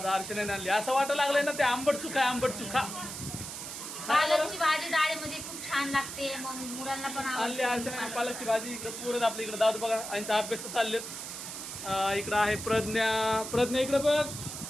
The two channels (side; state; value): right; noise; hiss, 8 dB below the sound